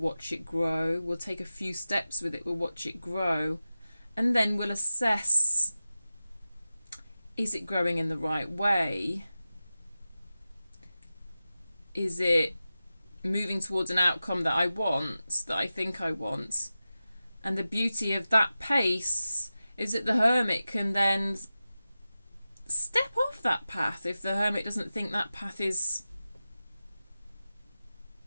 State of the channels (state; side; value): inverted; both; correlation -0.94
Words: it grow. We'll take a few steps with it. We'll watch it grow. And then we'll assess, is it growing in the right way? Is it moving towards an outcome that I want, that I think I want? And the beauty of that pace is that the Hermit can then step off that path if the Hermit doesn't think that path is